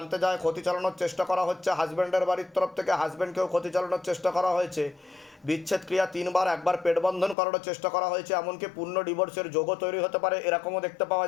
যায়, ক্ষতি চালানোর চেষ্টা করা হচ্ছে। হাজব্যান্ডের বাড়ির তরফ থেকে হাজব্যান্ডকেও ক্ষতি চালানোর চেষ্টা করা হয়েছে। বিচ্ছেদ ক্রিয়া 3 বার, একবার পেট বন্ধন করার চেষ্টা করা হয়েছে, এমনকি পূর্ণ ডিভোর্সের যোগও তৈরি হতে পারে, এরকমও দেখতে পাওয়া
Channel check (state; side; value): drops out; right; at 7.4 s